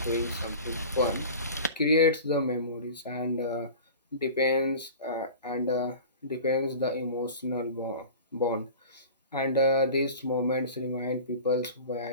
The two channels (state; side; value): inverted; both; correlation -0.37